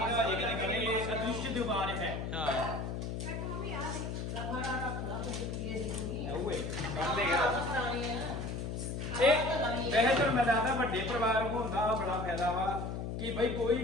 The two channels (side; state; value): left; noise; hum, 4 dB below the sound